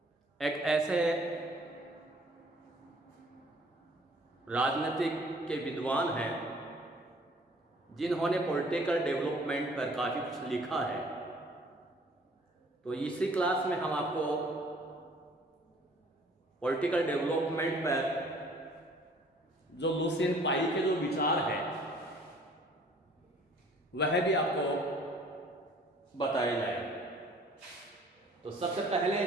एक ऐसे राजनीतिक के विद्वान हैं जिन्होंने पॉलिटिकल डेवलपमेंट पर काफ़ी कुछ लिखा है। तो इसी क्लास में हम आपको पॉलिटिकल डेवलपमेंट पर जो लुसियन पाई के जो विचार है वह भी आपको बताए जाएंगे। तो सबसे पहले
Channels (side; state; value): both; normal; correlation 0.55